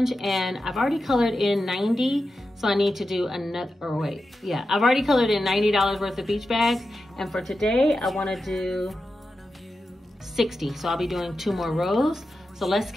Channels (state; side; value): normal; both; correlation 0.91